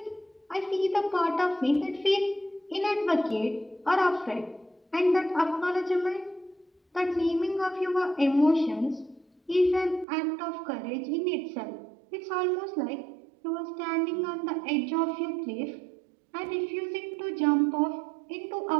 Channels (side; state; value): left; drops out; at 10.1 s